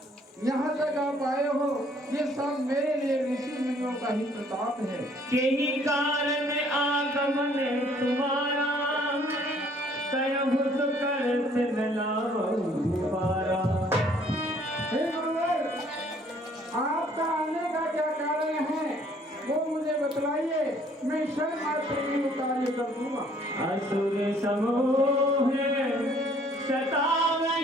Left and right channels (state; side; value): normal; both; correlation 0.61